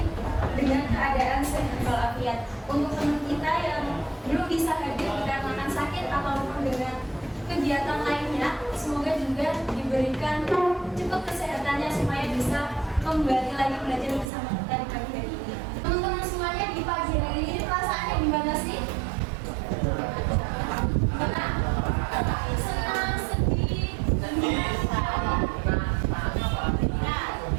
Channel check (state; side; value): drops out; left; at 14.3 s